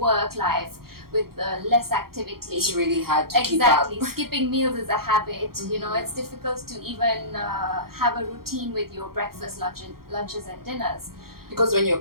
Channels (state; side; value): late; left; 0.94 ms